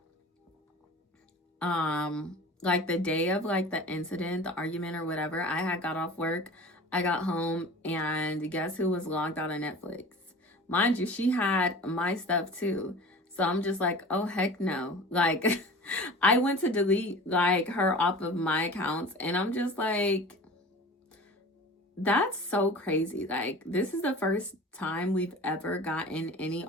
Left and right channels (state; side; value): normal; both; correlation 0.39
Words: like the day of like the incident, the argument or whatever, I had got off work, I got home, and guess who was logged out of Netflix? Mind you, she had my stuff too. So I'm just like, oh heck no. Like I went to delete like her off of my accounts, and I'm just like, that's so crazy. Like, this is the first time we've ever gotten any